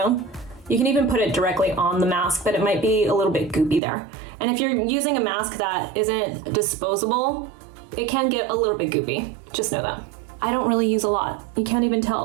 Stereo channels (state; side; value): drops out; left; at 3.8 s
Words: You can even put it directly on the mask, but it might be a little bit goopy there. And if you're using a mask that isn't disposable, it can get a little bit goopy. Just know that. I don't really use a lot. You can't even